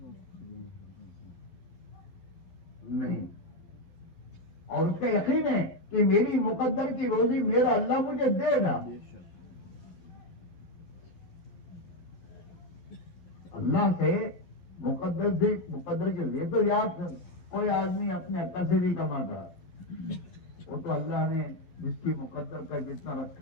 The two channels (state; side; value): late; right; 12 ms